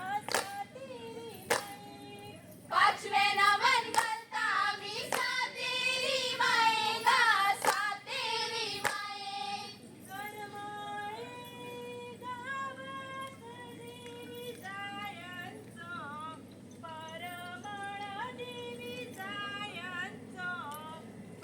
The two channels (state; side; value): identical; both; correlation 1.00